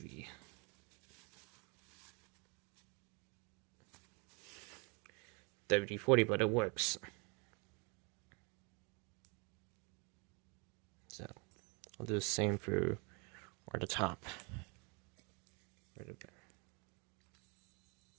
WD-40, but it works. So I'll do the same for the top.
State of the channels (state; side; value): quieter; left; 32.9 dB